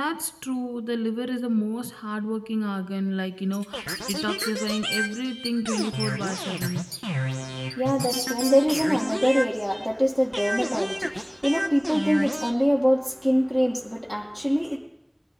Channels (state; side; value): identical; both; correlation 1.00